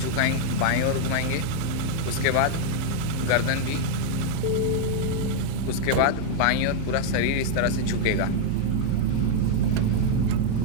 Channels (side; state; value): both; different; correlation 0.00